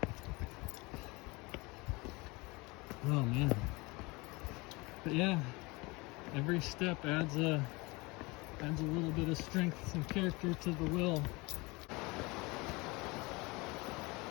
Oh man. But yeah, every step adds a little bit of strength and character to the will.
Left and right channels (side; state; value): right; quieter; 24.8 dB